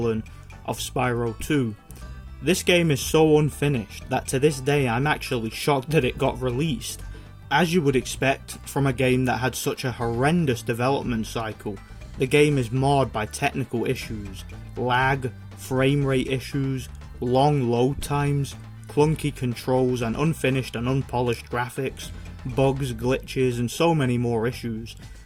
of Spyro 2. This game is so unfinished that to this day I'm actually shocked that it got released. As you would expect from a game that had such a horrendous development cycle, the game is marred by technical issues, lag, frame rate issues, long load times, clunky controls, and unfinished and unpolished graphics, bugs, glitches, and so many more issues.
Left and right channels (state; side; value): identical; both; correlation 1.00